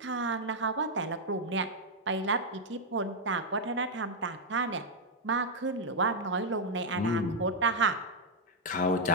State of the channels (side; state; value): both; normal; correlation -0.02